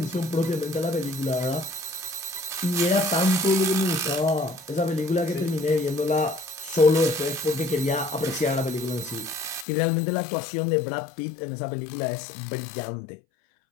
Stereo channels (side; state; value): right; drops out; at 9.7 s